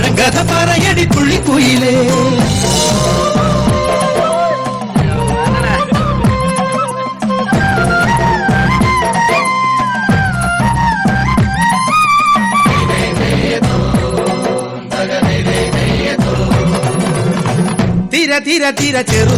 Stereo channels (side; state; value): both; identical; correlation 1.00